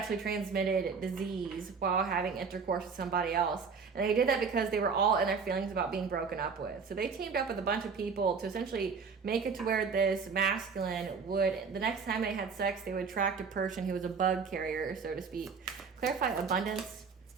transmitted disease while having intercourse with somebody else. And they did that because they were all in their feelings about being broken up with. So they teamed up with a bunch of people to essentially make it to where this masculine would, the next time they had sex, they would attract a person who was a bug carrier, so to speak. Clarify abundance.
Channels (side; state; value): left; quieter; 5.5 dB